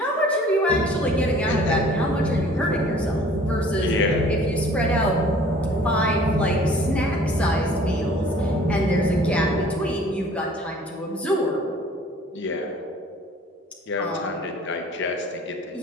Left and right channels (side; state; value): both; normal; correlation 0.51